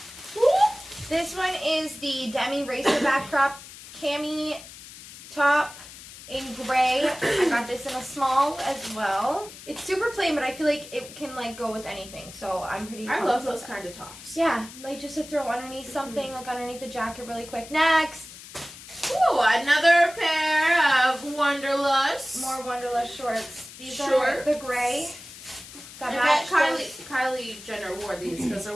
this one is the Demi Racer back crop cami top in gray. I got this in a small as well. It's super plain, but I feel like it can like go with anything. So I'm pretty. I pumped love with those that. kind of tops. Yeah, like just to throw underneath something, like underneath the jacket really quick. Next, Ooh, another pair of Wonderlust. more Wanderlust shorts. These are Shorts. the gray. I That bet match Kylie Jenner wore these because they're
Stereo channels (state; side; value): noise; left; hiss, 16 dB below the sound